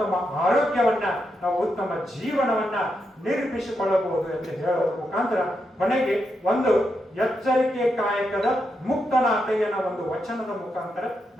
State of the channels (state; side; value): normal; both; correlation 0.84